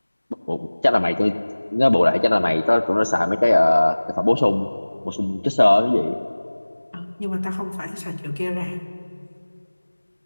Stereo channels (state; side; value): inverted; both; correlation -1.00